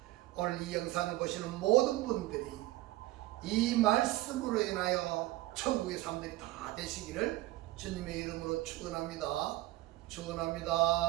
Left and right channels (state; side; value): quieter; left; 17.9 dB